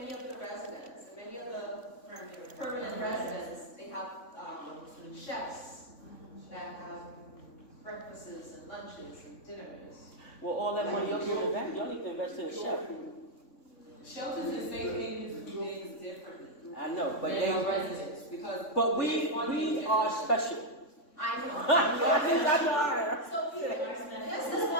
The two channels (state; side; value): late; right; 3.6 ms